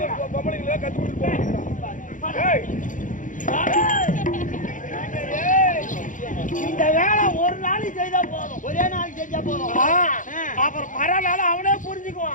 பொம்பளைங்கள கத்து கொடுத்து இந்த வேலை ஒரு நாளைக்கு செய்தா போதும் ஒரே நாளைக்கு செஞ்சா போதும் அப்புறம் மறுநாள் அவனே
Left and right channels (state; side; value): late; right; 0.38 ms